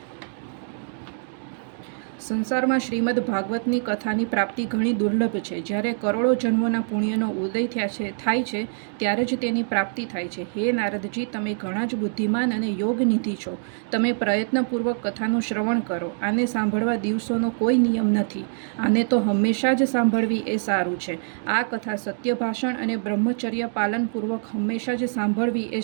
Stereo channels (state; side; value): silent; left; digital silence